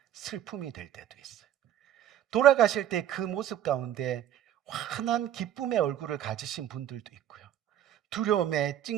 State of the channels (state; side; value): quieter; left; 11.2 dB